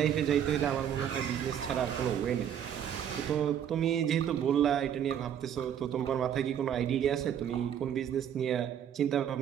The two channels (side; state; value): left; quieter; 9.3 dB